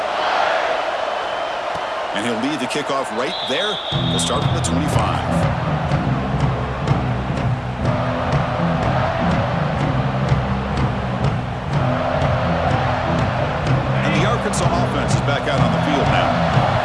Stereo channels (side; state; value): both; identical; correlation 1.00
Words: And he'll lead the kickoff right there. He'll start from the 25. And the Arkansas offense is back out on the field now.